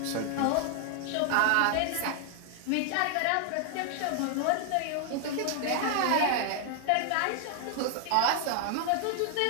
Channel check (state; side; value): different; both; correlation 0.00